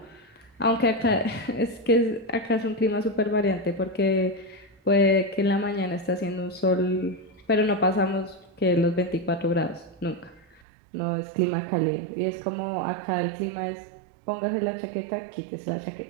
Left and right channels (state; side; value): drops out; left; at 10.6 s